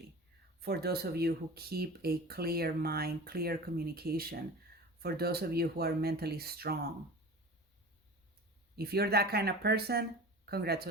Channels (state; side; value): normal; both; correlation 0.36